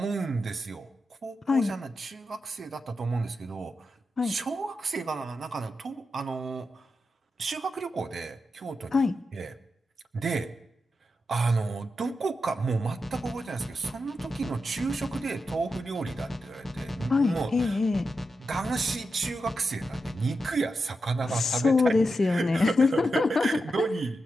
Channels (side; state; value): both; normal; correlation 0.88